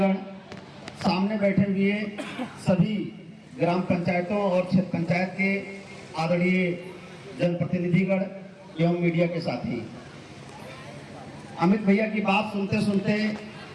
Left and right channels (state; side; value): identical; both; correlation 1.00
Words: सामने बैठे हुए सभी ग्राम पंचायतों और क्षेत्र पंचायत के आदरणीय जनप्रतिनिधिगण एवं मीडिया के साथी। अमित भैया की बात सुनते सुनते